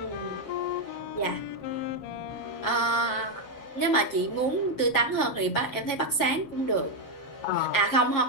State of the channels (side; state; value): right; late; 7.3 ms